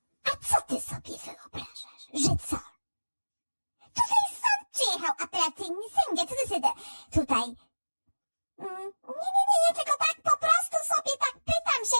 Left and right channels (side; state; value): both; inverted; correlation -1.00